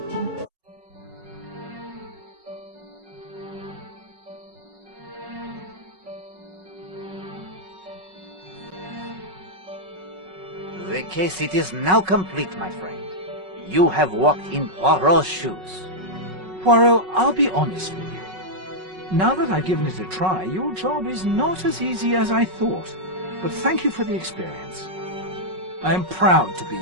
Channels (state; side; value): late; left; 5.4 ms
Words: The case it is now complete, my friend. You have walked in Poirot's shoes. Poirot, I'll be honest with you. Now that I've given it a try, your job is not as easy as I thought. But thank you for the experience. I am proud to be